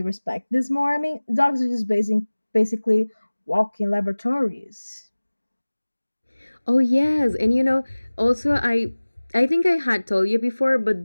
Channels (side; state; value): both; inverted; correlation -1.00